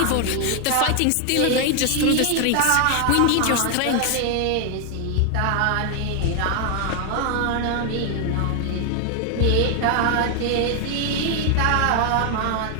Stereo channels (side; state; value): both; different; correlation 0.00